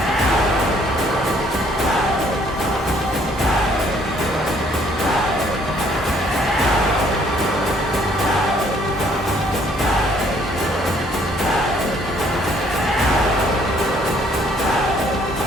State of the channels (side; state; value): both; normal; correlation 0.63